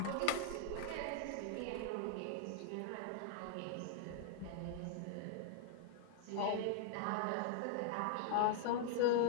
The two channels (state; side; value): different; both; correlation 0.00